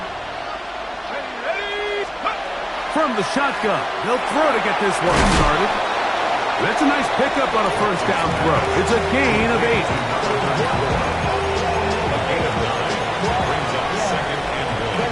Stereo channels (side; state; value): both; identical; correlation 1.00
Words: From the shotgun, they'll throw to get this one started. That's a nice pickup on a first down throw. It's a gain of 8.